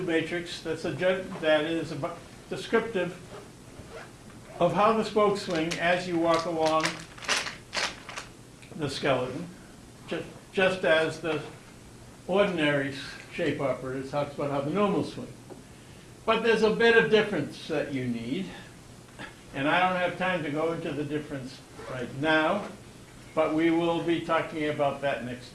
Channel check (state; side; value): identical; both; correlation 1.00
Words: matrix that is descriptive of how the spokes swing as you walk along the skeleton, just as the ordinary shape operator talks about how the normals swing. But there's a bit of difference that you need, and I don't have time to go into the difference right now, but we will be talking about that next